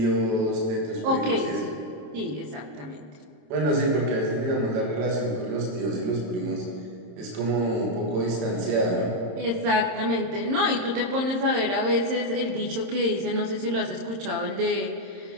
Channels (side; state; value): left; late; 27 ms